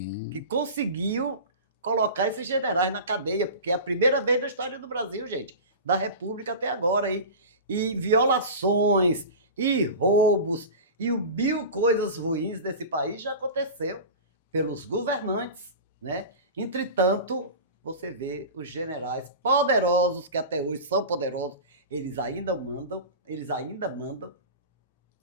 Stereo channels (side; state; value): both; inverted; correlation -0.31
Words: que conseguiu colocar esses generais na cadeia, porque é a primeira vez na história do Brasil, gente, da República até agora. E violações, e roubos, e mil coisas ruins desse país já aconteceu pelos governantes, né? Entretanto, você vê os generais poderosos, que até hoje são poderosos, eles ainda mandam,